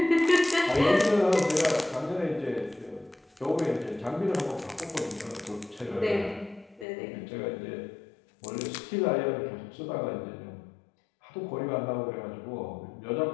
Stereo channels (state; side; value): drops out; right; at 6.9 s